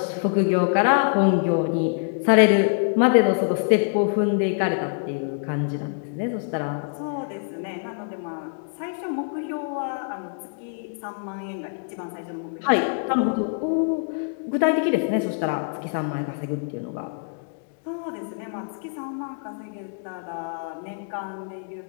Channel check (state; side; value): silent; right; digital silence